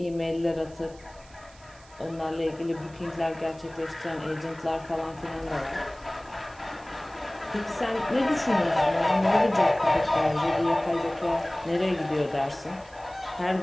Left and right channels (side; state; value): right; noise; hiss, 25 dB below the sound